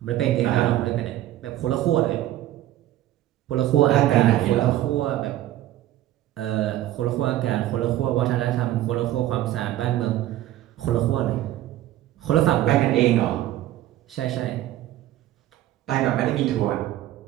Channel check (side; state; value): left; quieter; 14.0 dB